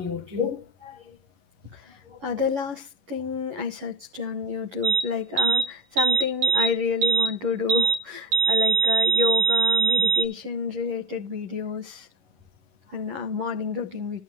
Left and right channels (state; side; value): late; left; 11 ms